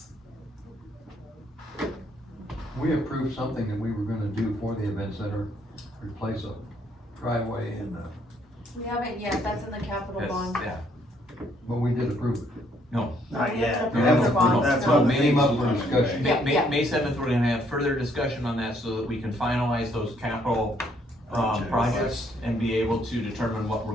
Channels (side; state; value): both; normal; correlation 0.68